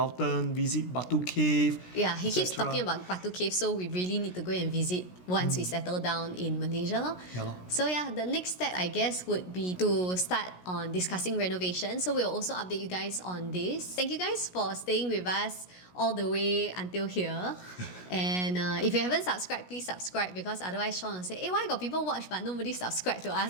visit Batu Cave? Yeah, he keeps talking about Batu Cave, so we really need to go and visit once we settle down in Malaysia. Yeah, lor. So yeah, the next step I guess would be to start on discussing renovation. So we'll also update you guys on this. Thank you guys for staying with us all the way until here. And if you haven't subscribed, please subscribe, because otherwise Sean will say, hey, why got people watch but nobody subscribe to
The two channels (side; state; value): right; late; 17 ms